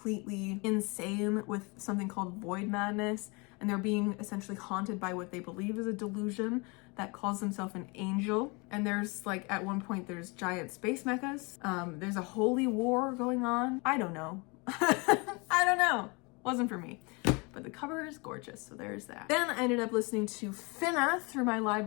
insane with something called void madness, and they're being essentially haunted by what they believe is a delusion that calls themselves an angel. And there's like, at one point, there's giant space mechas. There's a holy war going on. I don't know. I don't know. Wasn't for me. But the cover is gorgeous, so there's that. Then I ended up listening to Fina through my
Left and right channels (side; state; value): right; quieter; 29.0 dB